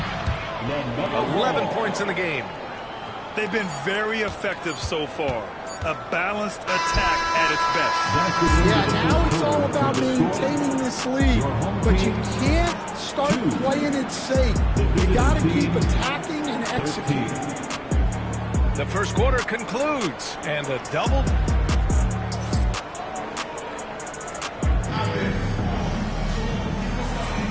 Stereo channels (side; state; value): both; identical; correlation 1.00